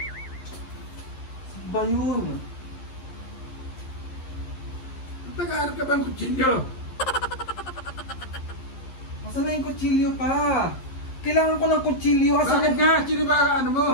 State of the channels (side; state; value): right; late; 11 ms